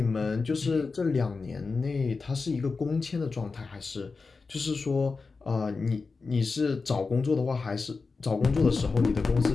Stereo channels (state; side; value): quieter; right; 4.3 dB